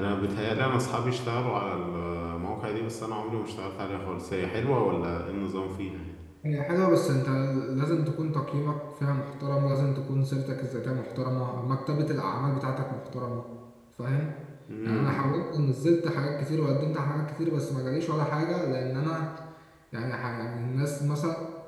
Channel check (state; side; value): identical; both; correlation 1.00